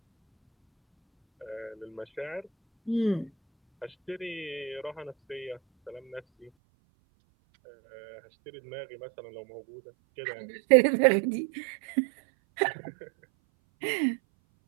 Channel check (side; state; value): left; drops out; at 6.5 s